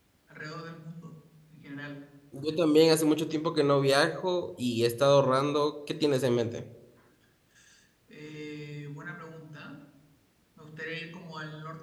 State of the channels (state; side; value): identical; both; correlation 1.00